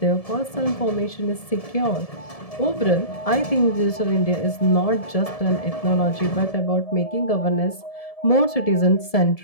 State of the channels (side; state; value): right; late; 1.7 ms